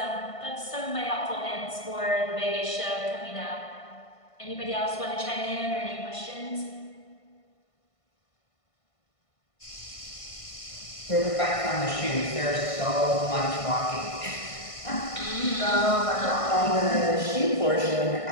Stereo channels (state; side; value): late; right; 1.5 ms